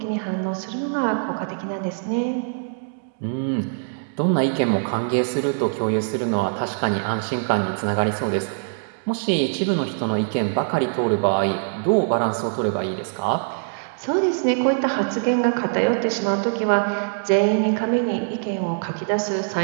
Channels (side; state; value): left; silent; digital silence